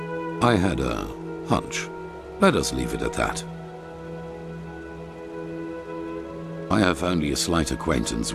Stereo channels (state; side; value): identical; both; correlation 1.00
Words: I had a hunch. Let us leave it at that. I have only a slight acquaintance